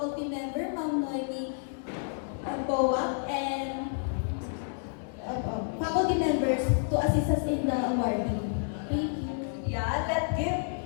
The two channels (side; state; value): right; silent; digital silence